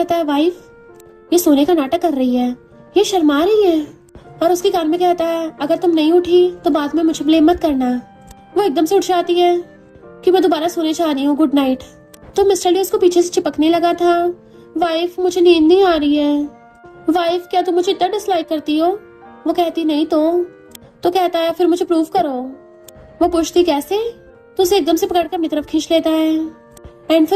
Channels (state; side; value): identical; both; correlation 1.00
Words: है वाइफ ये सोने का नाटक कर रही है, ये शर्मा रही है। और उसके कान में कहता है अगर तुम नहीं उठी तो बाद में मुझे ब्लेम मत करना। वो एकदम से उठ जाती है कि मैं दोबारा सोने जा रही हूँ, गुड नाइट। तो मिस्टर ली उसको पीछे से चिपकने लगा था, वाइफ मुझे नींद नहीं आ रही है। वाइफ क्या तुम मुझे इतना डिसलाइक करती हो? वो कहती नहीं तो कहता है फिर मुझे प्रूव करो। वो पूछती कैसे? तो उसे एकदम से पकड़कर अपनी तरफ खींच लेता है एंड